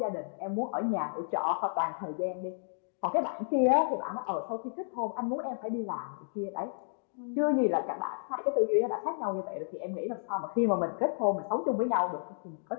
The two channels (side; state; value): right; silent; digital silence